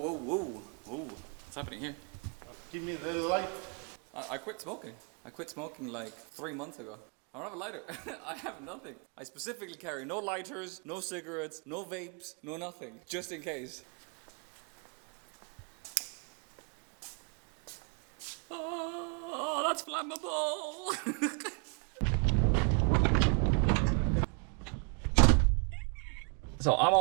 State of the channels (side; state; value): left; quieter; 38.7 dB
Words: whoa, whoa. What's happening here? Give me the light. I quit smoking. I quit smoking like 3 months ago. I don't have a lighter. I have nothing. I specifically carry no lighters, no cigarettes, no vapes, no nothing, just in case. Oh, that's flammable. So I'm